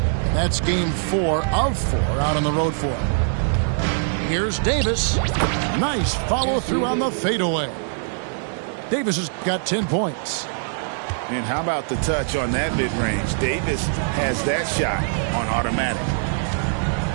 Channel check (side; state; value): left; silent; digital silence